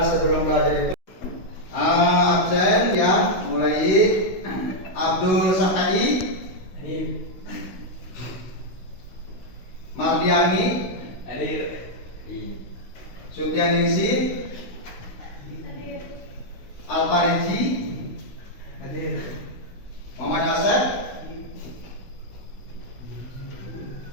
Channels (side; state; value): right; late; 16 ms